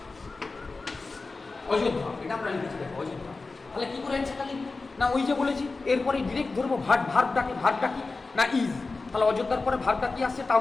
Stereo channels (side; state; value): right; quieter; 3.8 dB